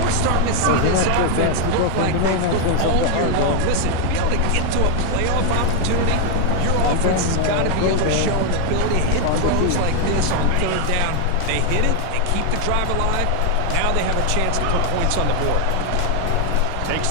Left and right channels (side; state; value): both; different; correlation 0.00